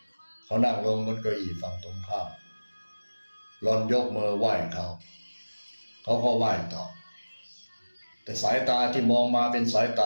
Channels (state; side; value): inverted; both; correlation -1.00